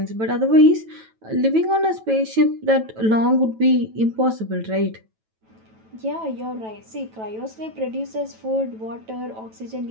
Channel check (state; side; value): late; left; 9.1 ms